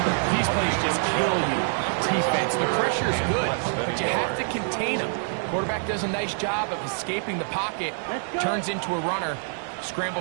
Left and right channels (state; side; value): silent; left; digital silence